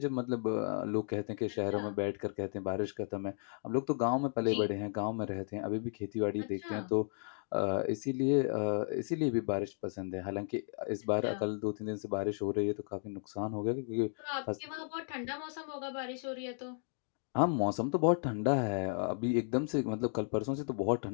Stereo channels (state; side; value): silent; right; 55 dB below the other